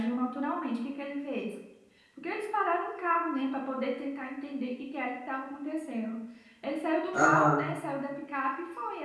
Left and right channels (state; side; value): identical; both; correlation 1.00